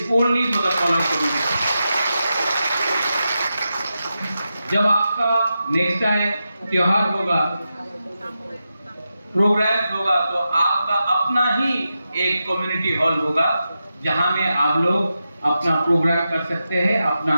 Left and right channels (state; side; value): inverted; both; correlation -0.89